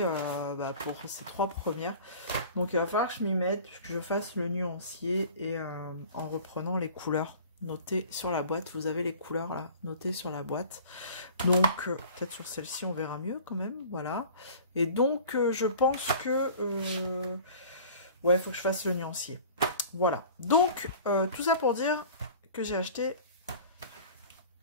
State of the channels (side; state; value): both; inverted; correlation -0.43